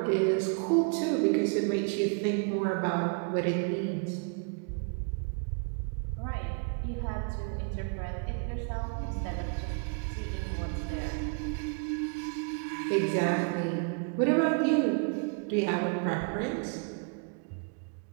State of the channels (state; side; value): quieter; left; 39.8 dB